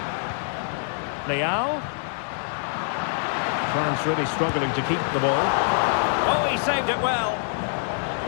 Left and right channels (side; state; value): right; silent; 60 dB below the other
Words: Leao. France really struggling to keep the ball. Oh, he saved it well.